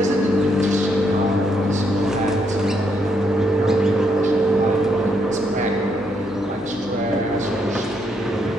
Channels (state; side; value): normal; both; correlation 0.75